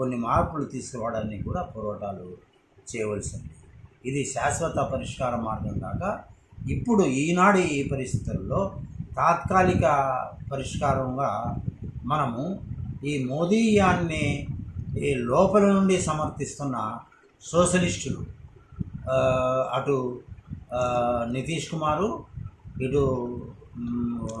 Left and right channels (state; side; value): identical; both; correlation 1.00